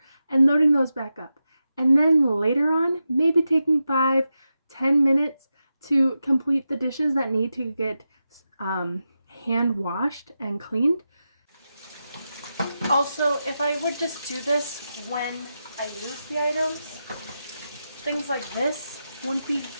and loading those back up. And then later on, maybe taking 5-10 minutes to complete the dishes that need to get hand washed and cleaned. Also, if I would just do this when I use the items, things like this wouldn't be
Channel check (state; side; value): inverted; both; correlation -0.90